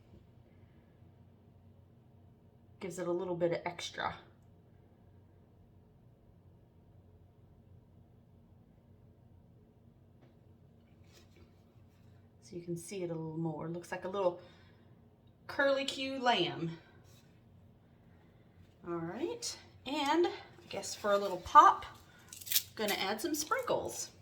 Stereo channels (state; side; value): identical; both; correlation 1.00